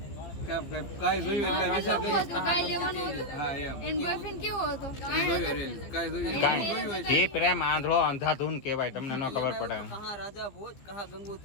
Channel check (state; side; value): late; right; 15 ms